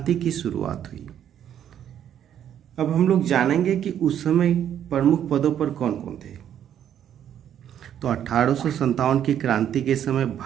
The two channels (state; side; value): quieter; left; 9.9 dB